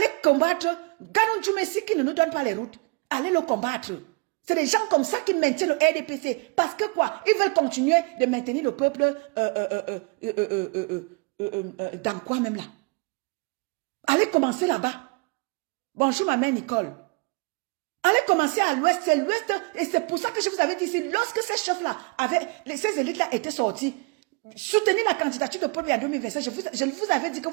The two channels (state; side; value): quieter; left; 30.5 dB